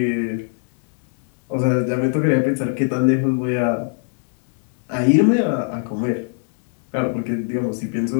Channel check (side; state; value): right; silent; 61 dB below the other